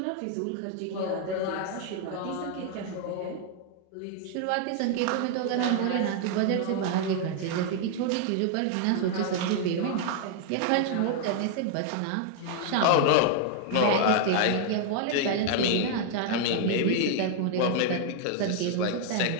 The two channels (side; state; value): both; different; correlation 0.00